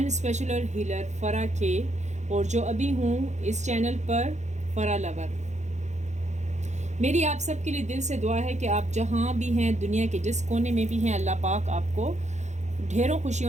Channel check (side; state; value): left; late; 0.34 ms